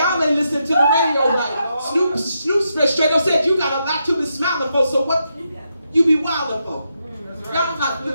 ain't listening to the radio right. Snoop straight up said you got a lot to be smiling for, so what you be wilding for? Y'all not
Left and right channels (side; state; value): both; inverted; correlation -0.83